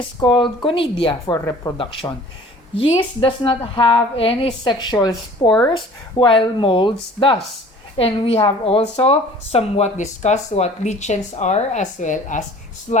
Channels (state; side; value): normal; both; correlation 0.48